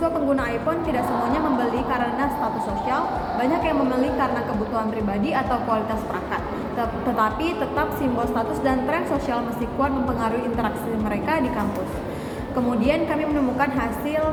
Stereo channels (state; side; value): identical; both; correlation 1.00